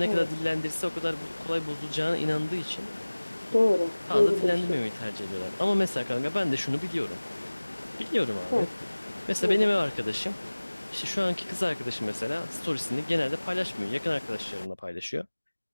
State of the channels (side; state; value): both; inverted; correlation -1.00